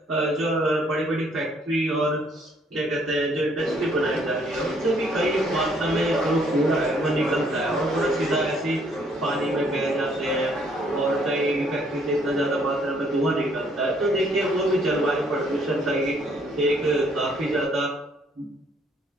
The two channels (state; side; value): normal; both; correlation 0.65